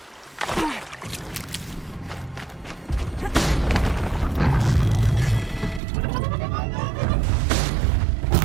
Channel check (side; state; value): left; drops out; at 5.8 s